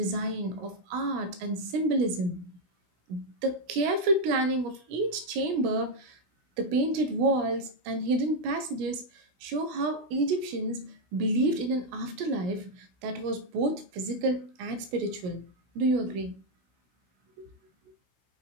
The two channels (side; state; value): left; late; 16 ms